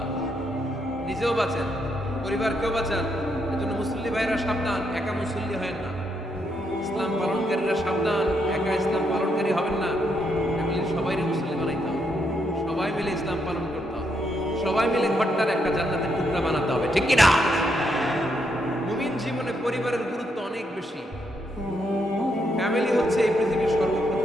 নিজেও বাঁচেন, পরিবারকেও বাঁচান। এজন্য মুসল্লি ভাইরা সাবধান, একা মুসল্লি হয় না। ইসলাম পালনকারীরা সাবধান, একা ইসলাম পালনকারী হবেন না। ফ্যামিলির সবাইকে মুসল্লি বানাইতে হবে, সবাই মিলে ইসলাম পালন করতে হবে, সবাই মিলে ঘরটার একটা জান্নাতের টুকরা বানাতে হবে, ঠিক কি না? মুমিন জীবনে পরিবারের গুরুত্ব অনেক বেশি। ফ্যামিলি হচ্ছে এই পৃথিবীর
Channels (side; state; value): both; normal; correlation 0.78